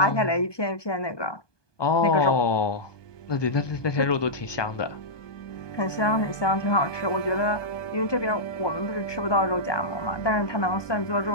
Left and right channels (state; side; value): late; right; 1.2 ms